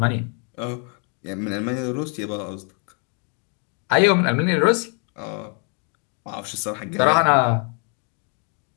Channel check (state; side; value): quieter; right; 38.3 dB